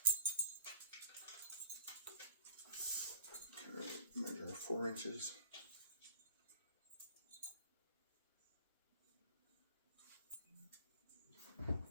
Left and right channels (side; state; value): both; inverted; correlation -0.47